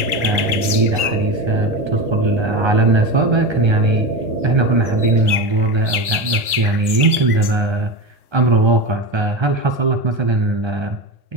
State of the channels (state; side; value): late; left; 1.3 ms